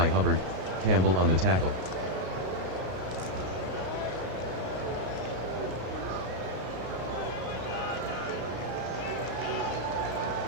Hubbard, Campbell on the tackle.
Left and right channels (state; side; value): late; left; 33 ms